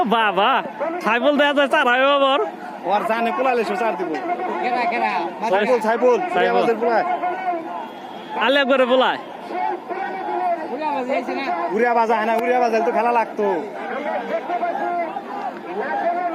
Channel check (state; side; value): identical; both; correlation 1.00